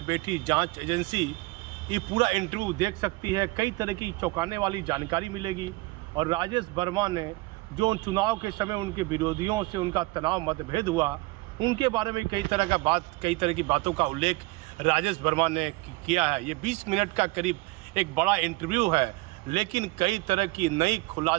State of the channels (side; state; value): left; quieter; 22.6 dB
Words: बैठी जांच एजेंसी ये पूरा इंटरव्यू देख सकती है। कई तरह की चौंकाने वाली जानकारी मिलेगी और राजेश वर्मा ने जो चुनाव के समय उनके विरोधियों से उनका तनाव मतभेद हुआ, उनके बारे में कई तरह की बातों का उल्लेख राजेश वर्मा ने किया है। ये 20 मिनट का करीब एक बड़ा इंटरव्यू है, लेकिन कई तरह की नई